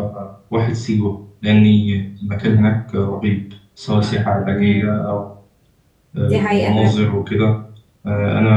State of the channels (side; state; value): both; identical; correlation 1.00